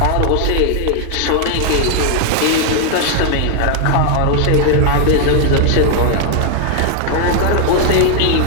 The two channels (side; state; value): both; different; correlation 0.00